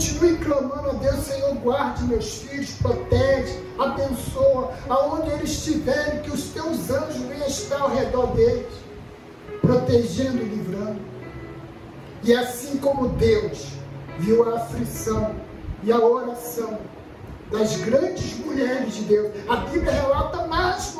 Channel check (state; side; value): identical; both; correlation 1.00